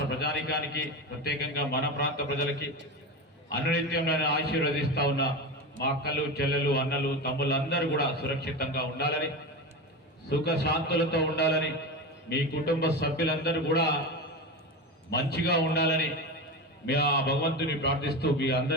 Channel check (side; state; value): both; normal; correlation 0.22